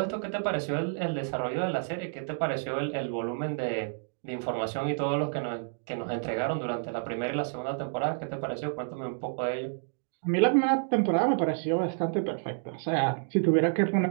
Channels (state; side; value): silent; left; digital silence